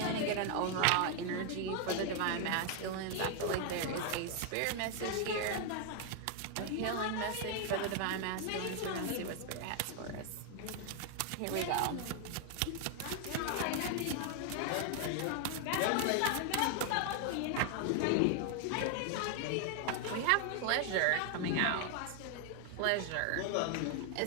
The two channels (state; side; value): different; both; correlation 0.00